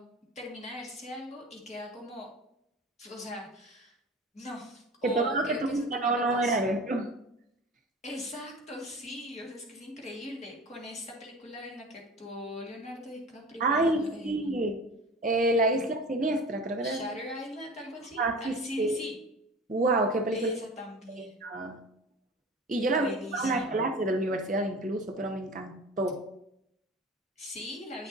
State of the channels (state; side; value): normal; both; correlation 0.37